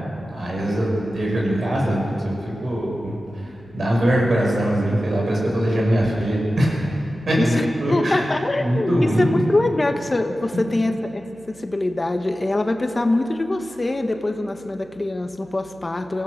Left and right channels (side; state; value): right; noise; hum, 29 dB below the sound